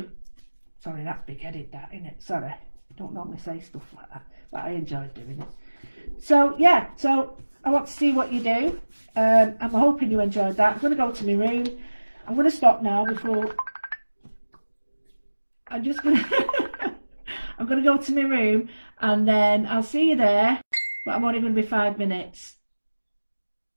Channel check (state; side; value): inverted; both; correlation -1.00